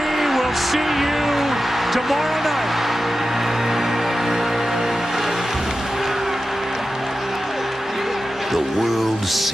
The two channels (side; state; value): both; normal; correlation 0.93